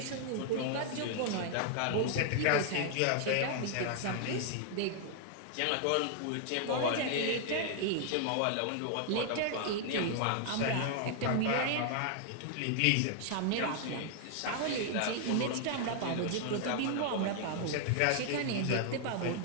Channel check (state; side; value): different; both; correlation 0.00